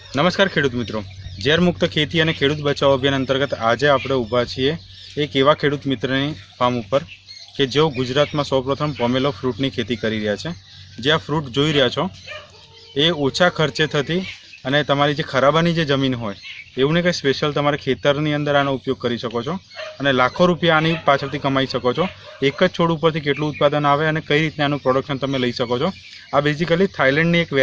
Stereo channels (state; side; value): identical; both; correlation 1.00